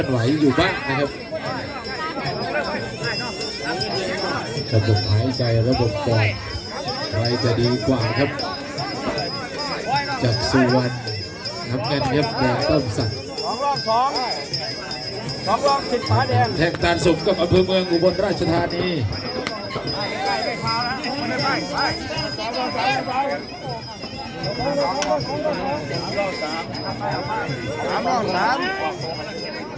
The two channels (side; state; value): both; identical; correlation 1.00